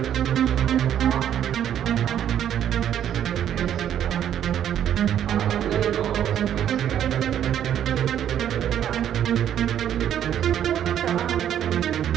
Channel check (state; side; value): quieter; left; 10.2 dB